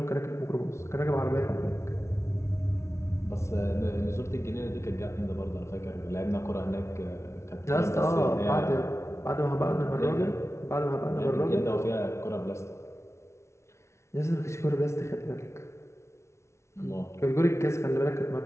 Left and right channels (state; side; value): late; right; 0.13 ms